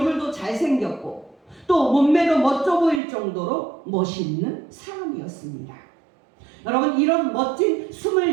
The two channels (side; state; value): left; drops out; at 3.0 s